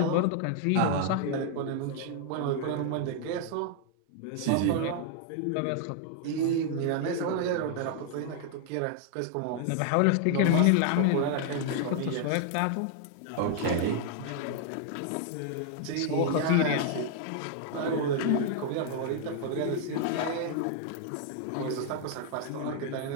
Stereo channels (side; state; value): both; different; correlation 0.00